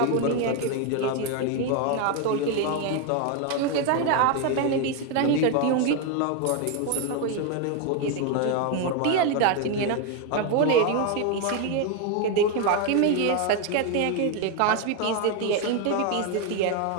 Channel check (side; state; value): both; different; correlation 0.01